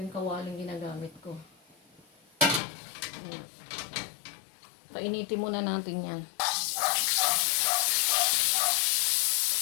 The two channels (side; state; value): right; drops out; at 2.6 s